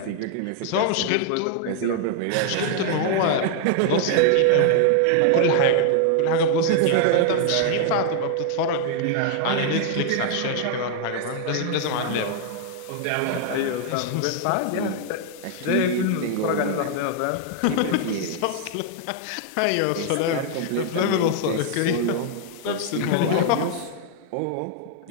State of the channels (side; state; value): both; different; correlation 0.00